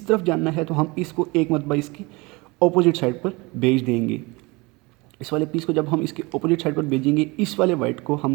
तरफ जाना है तो हम इसको एक मरतबा इसकी अपोजिट साइड पर भेज देंगे। इस वाले पीस को जब हम इसके अपोजिट साइड पर भेजेंगे, इस वाले वाइट को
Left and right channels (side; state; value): left; quieter; 25.0 dB